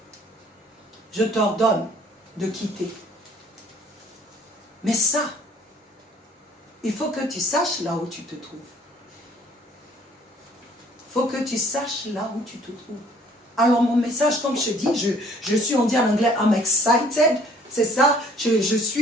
de quitter. Mais ça, il faut que tu saches là où tu te trouves. Il faut que tu saches là où tu te trouves. Alors mon message, comme je dis, je suis, on dit en anglais, I'm excited C'est ça, je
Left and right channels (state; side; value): normal; both; correlation 0.57